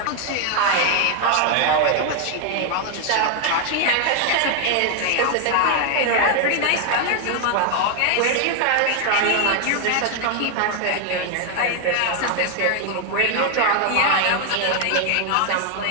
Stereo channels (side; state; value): both; different; correlation 0.00